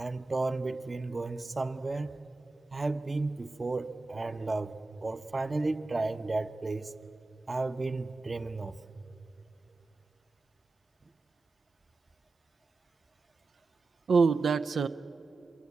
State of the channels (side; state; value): left; quieter; 3.5 dB